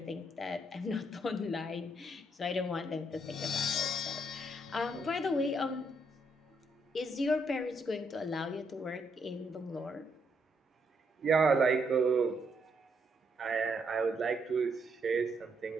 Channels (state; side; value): normal; both; correlation 0.75